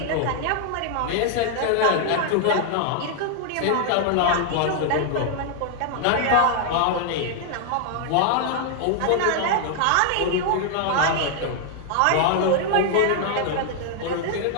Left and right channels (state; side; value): different; both; correlation 0.00